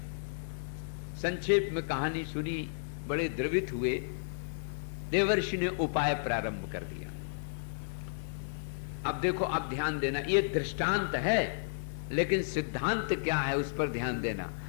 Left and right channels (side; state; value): right; silent; digital silence